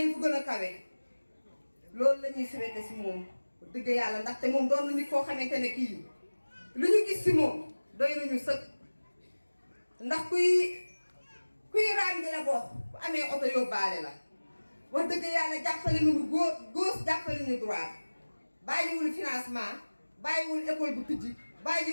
fu gën a kawe loolu la ñuy souhaité si moom dëgg yàlla ndaxte moom doon na nit koo xamante ne kii lu ñu gis si moom doy nañu sëkk ndax kuy raam di la bokk bu amee oto yóbbaale la wax dëgg yàlla jàppale nañu gauche jàppale nañu droite bàyyiwul financement bàyyiwul école bu tijji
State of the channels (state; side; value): inverted; both; correlation -1.00